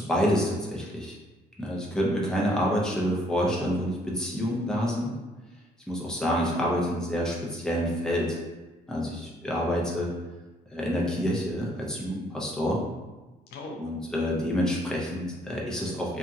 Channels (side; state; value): both; normal; correlation 0.66